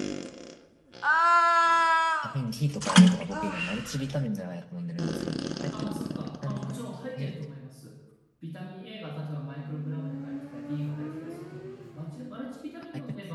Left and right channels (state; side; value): identical; both; correlation 1.00